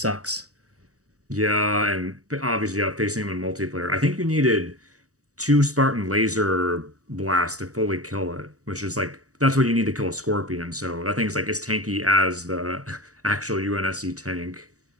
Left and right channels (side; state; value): left; late; 0.66 ms